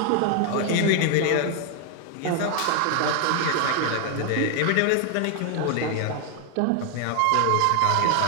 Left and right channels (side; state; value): both; different; correlation 0.00